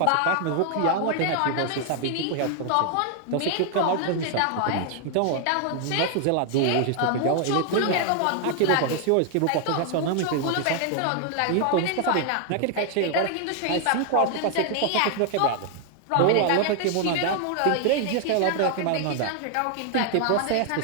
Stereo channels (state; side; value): different; both; correlation 0.00